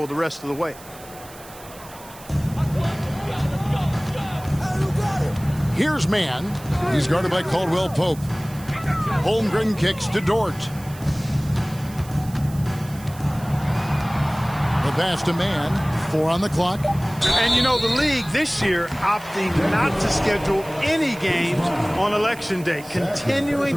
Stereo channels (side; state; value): right; noise; hiss, 19 dB below the sound